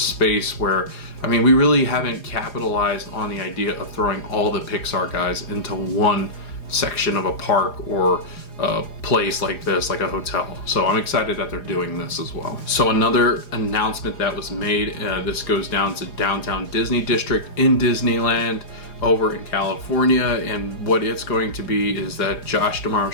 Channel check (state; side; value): late; right; 4.9 ms